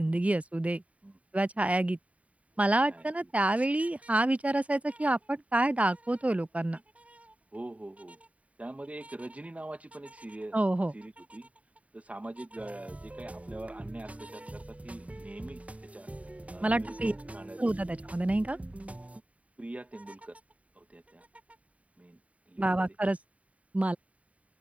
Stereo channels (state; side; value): late; left; 0.067 ms